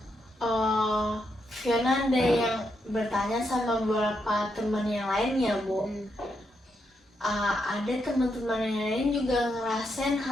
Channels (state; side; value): normal; both; correlation 0.81